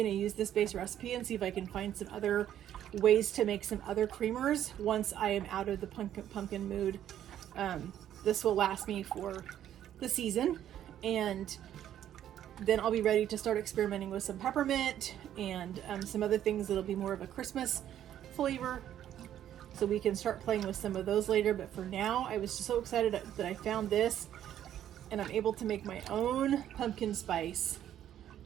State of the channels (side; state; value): left; quieter; 11.1 dB